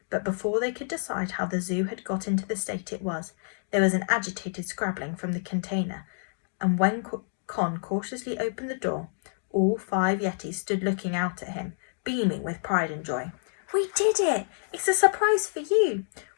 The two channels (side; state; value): right; silent; digital silence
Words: But before they could decide how the zoo had got into the state it was, there was an agitated scrabbling from the container, and when Con cautiously opened the door, all 5 Yetis stood looking out at him, beaming with pride and joy. "We did it! It's a surprise for you!